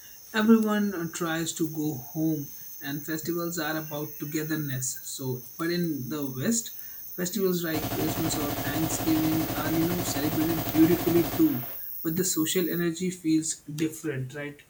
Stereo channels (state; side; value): identical; both; correlation 1.00